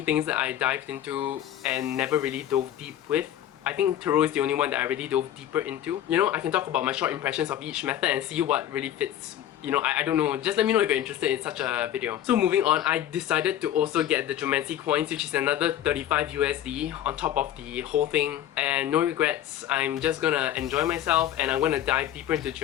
things that I dived into and never really dove deep with. I think Tarot is the only one that I really dove deeper into. You know, I can talk about my short impressions of each method and see what really fits you know, I don't know, just let me know if you're interested in such a video. So moving on, I decided to also get the GEOMANCY coins, which is another 35 USD on top of the whole thing. And no regrets, I'm just gonna enjoy myself and I'm gonna dive deeper into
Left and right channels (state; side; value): quieter; right; 11.5 dB